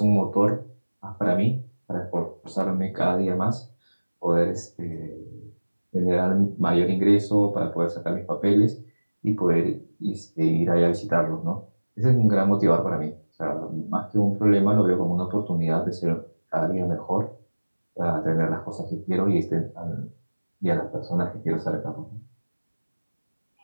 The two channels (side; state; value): both; inverted; correlation -1.00